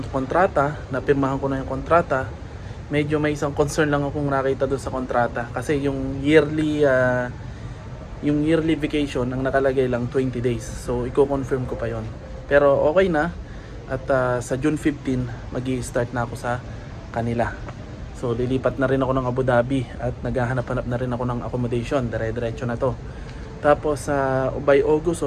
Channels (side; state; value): both; identical; correlation 1.00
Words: kontrata, napirmahan ko na yung kontrata. Medyo may isang concern lang akong nakita doon sa kontrata kasi yung yearly vacation ang nakalagay lang 20 days. So i-confirm ko pa yon. Pero okay na at sa June 15 magi-start na ako sa kanila. So lilipat na rin ako ng Abu Dhabi at naghahanap-hanap na rin ako ng accommodation. Dire-diretso na to. Tapos by August